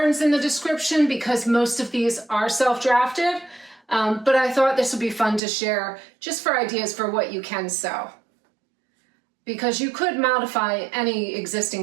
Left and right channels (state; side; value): drops out; left; at 5.4 s